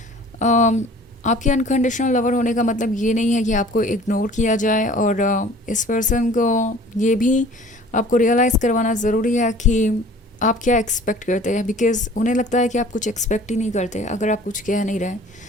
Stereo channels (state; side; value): normal; both; correlation 0.48